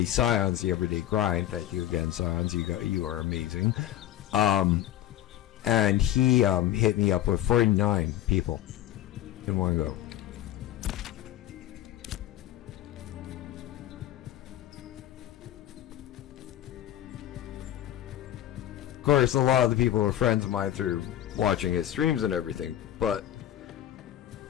Scions, the Everyday Grind. Thank you again, Scions. You are amazing. And he hit me up with 49 people in one go. Of course, a lot of the people are friends of mine through watching his streams and everything, but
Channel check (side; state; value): right; quieter; 12.5 dB